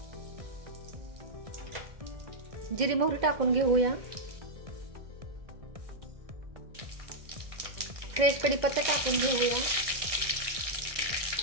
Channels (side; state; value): left; late; 1.6 ms